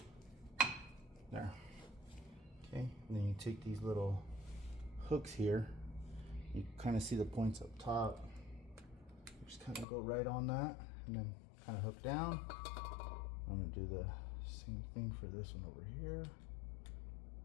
There. Okay, and then you take these little hooks here. You kind of see the points up top. Just kind of go right on that and then kind of hook down. I'm gonna do the same thing for this one over here.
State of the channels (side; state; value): right; drops out; at 9.9 s